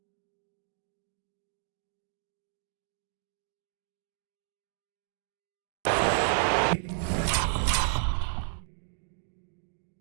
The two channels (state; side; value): silent; left; digital silence